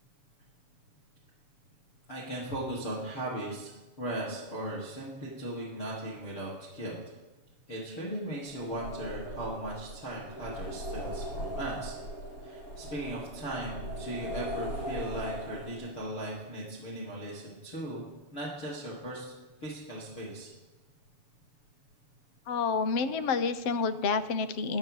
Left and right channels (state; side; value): late; right; 7.1 ms